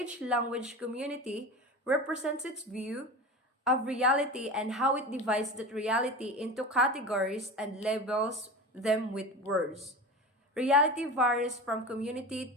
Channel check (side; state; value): both; normal; correlation 0.29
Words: language community represents its view of reality and how it divides that reality into categories and labels them with words. Reality varies from community